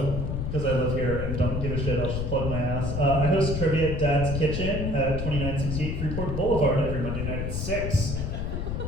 because I live here and don't give a shit, I'll just plug my ass. I host trivia at Dad's Kitchen at 2968 Freeport Boulevard every Monday night at 6.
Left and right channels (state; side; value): noise; left; rumble, 2 dB below the sound